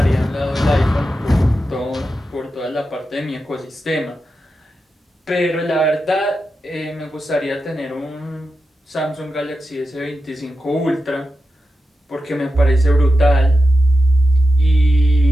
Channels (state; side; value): normal; both; correlation 0.90